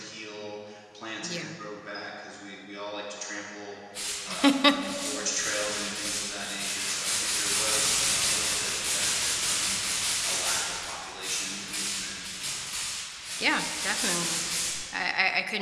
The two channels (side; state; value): both; identical; correlation 1.00